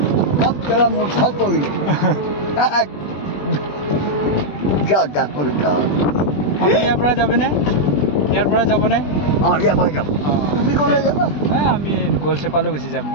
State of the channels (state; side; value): late; right; 20 ms